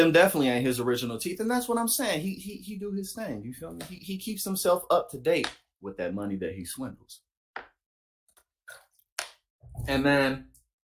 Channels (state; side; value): identical; both; correlation 1.00